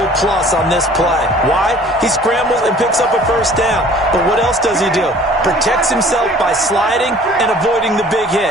plus on this play. Why? He scrambles and picks up a first down. But what else does he do? Protects himself by sliding and avoiding the big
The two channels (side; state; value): both; normal; correlation 0.50